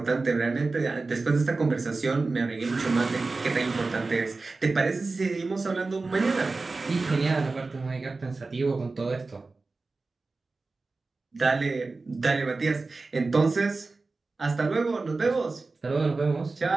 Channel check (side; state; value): left; quieter; 3.7 dB